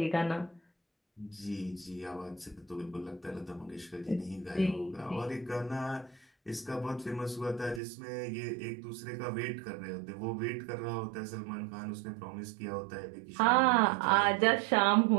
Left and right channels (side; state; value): left; drops out; at 7.8 s